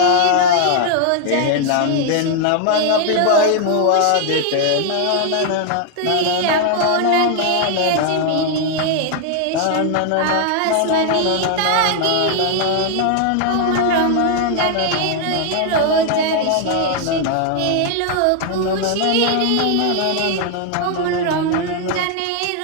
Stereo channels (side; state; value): both; different; correlation 0.00